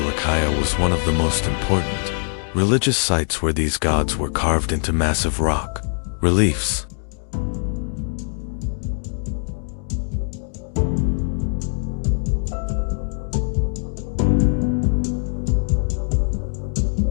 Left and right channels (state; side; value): silent; right; digital silence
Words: was one of the most important religious sites where these gods were carved into massive rock reliefs.